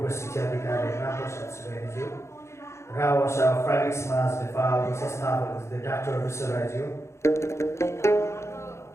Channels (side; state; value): right; late; 0.13 ms